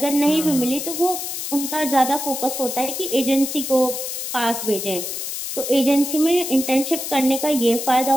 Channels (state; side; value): noise; left; hiss, 5 dB below the sound